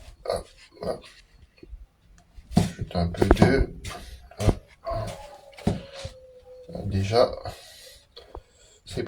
hop, hop. J'ajoute un peu d'œuf. Déjà, c'est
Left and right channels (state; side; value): identical; both; correlation 1.00